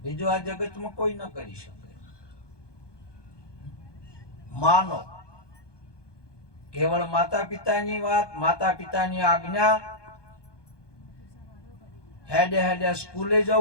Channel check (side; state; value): right; late; 1.2 ms